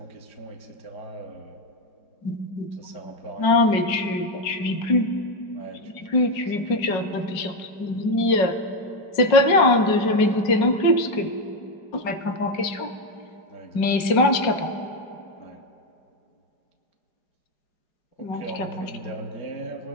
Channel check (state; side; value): late; right; 5.4 ms